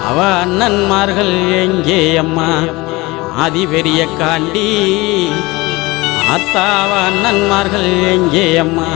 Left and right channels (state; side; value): quieter; right; 22.1 dB